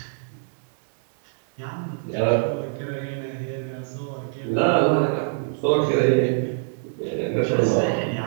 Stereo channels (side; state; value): left; silent; digital silence